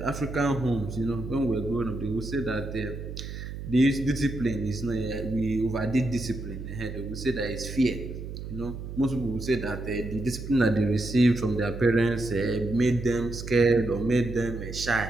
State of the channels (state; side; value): noise; right; hum, 8 dB below the sound